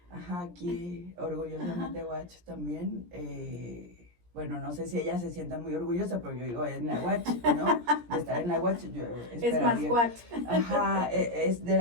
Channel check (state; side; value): late; left; 17 ms